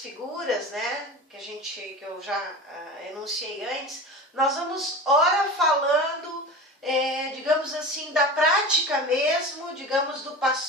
né, que eu já enunciei antes, nós vamos ora falando, digamos assim, da prática mesmo, digamos, do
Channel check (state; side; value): normal; both; correlation 0.31